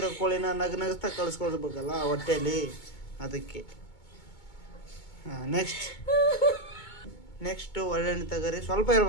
ಕೋಳಿನ ನಗಸ್ತಾ ಕಳಿಸ್ಕೊಳ್ಬೇಕಲ್ಲ ಹೊಟ್ಟೆಯಲ್ಲಿ, ಅದಕ್ಕೆ. ನೆಕ್ಸ್ಟ್ ಒಳ್ಳೆಣ್ಣೆ ತಗೋರಿ. ಸ್ವಲ್ಪ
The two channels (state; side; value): late; right; 2.2 ms